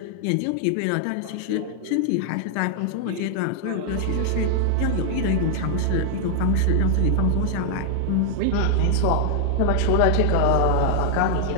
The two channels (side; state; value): both; different; correlation 0.00